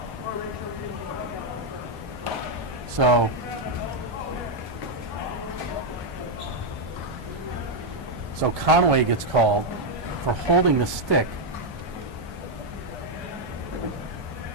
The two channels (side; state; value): both; normal; correlation 0.00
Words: So Conway gets called for holding the stick.